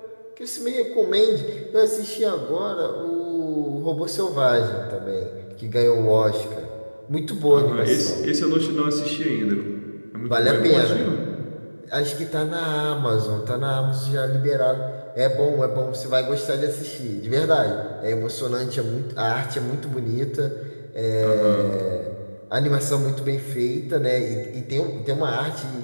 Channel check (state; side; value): inverted; both; correlation -1.00